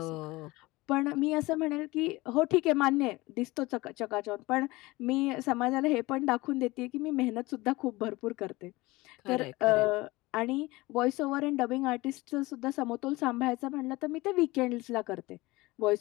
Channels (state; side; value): quieter; right; 21.0 dB